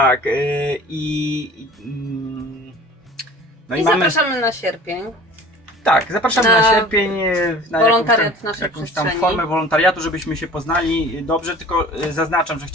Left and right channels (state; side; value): normal; both; correlation 0.44